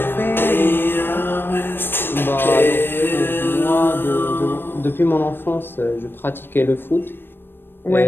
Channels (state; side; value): late; right; 0.099 ms